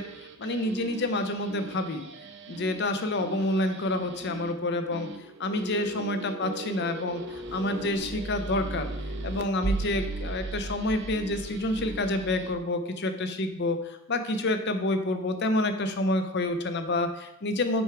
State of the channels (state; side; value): normal; both; correlation 0.34